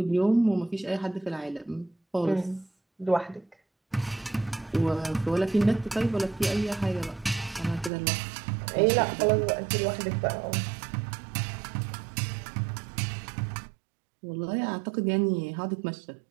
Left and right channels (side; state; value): left; drops out; at 7.9 s